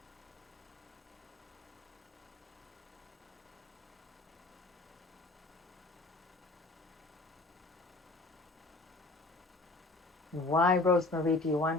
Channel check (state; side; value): quieter; right; 3.1 dB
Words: Why, Rosemary, do you